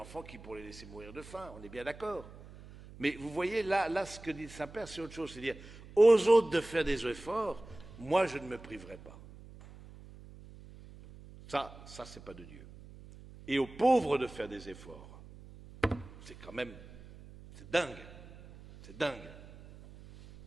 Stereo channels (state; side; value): noise; right; hum, 18 dB below the sound